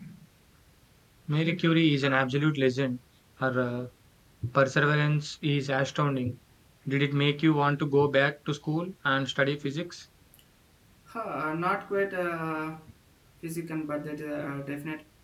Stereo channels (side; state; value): both; identical; correlation 1.00